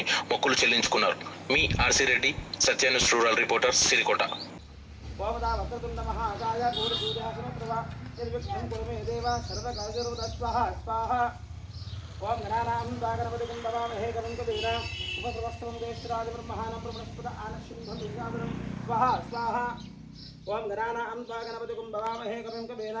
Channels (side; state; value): both; identical; correlation 1.00